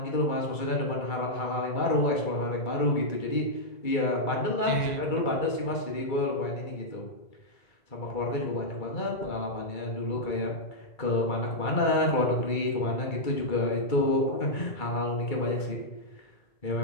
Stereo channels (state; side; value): late; right; 2.3 ms